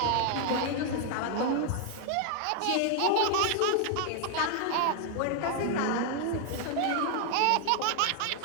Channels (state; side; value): different; both; correlation 0.00